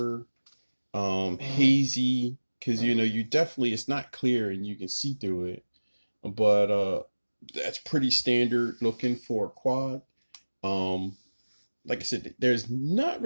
hazy. Because you definitely it's not clear and you can see through it, but that's pretty standard looking for a quad. Um, like I said, there's not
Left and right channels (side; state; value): both; inverted; correlation -1.00